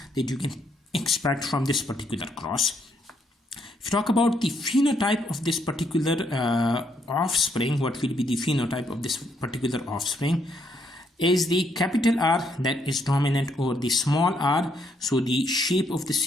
that you can expect from this particular cross. If you talk about the phenotype of this particular offspring, what will be the phenotype of this particular offspring? Is the capital R that is dominant over the small r, so the shape of the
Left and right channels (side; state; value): both; normal; correlation 0.73